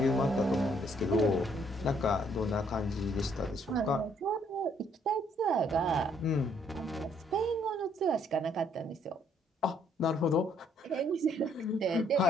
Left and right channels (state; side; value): normal; both; correlation 0.67